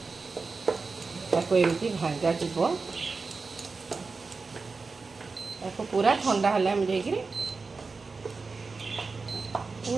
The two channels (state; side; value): quieter; left; 4.3 dB